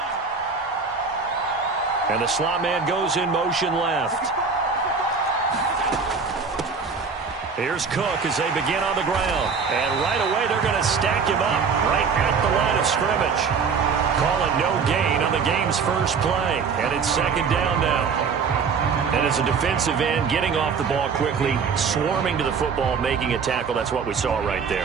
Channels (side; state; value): left; quieter; 5.4 dB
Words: And the slot man goes in motion left. Here's Cook as they begin on the ground. And right away, they're going to stack him up right at the line of scrimmage. Call it no gain on the game's first play. And it's second down now. And as a defensive end, getting off the ball quickly, swarming to the football, making a tackle, that's what we saw right